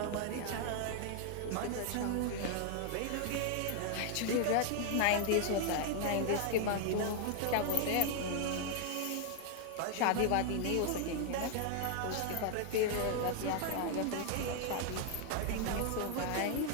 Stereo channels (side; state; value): both; different; correlation 0.00